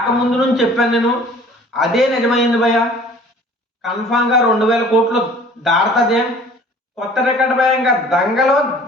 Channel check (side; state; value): both; normal; correlation 0.50